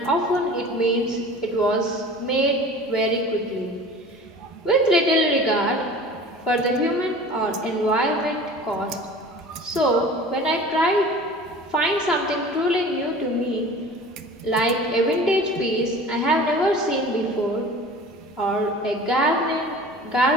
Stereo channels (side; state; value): both; normal; correlation 0.41